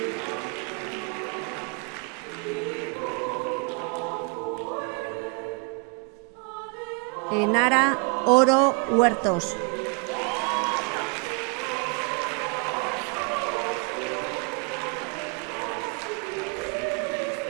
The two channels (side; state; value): left; quieter; 34.9 dB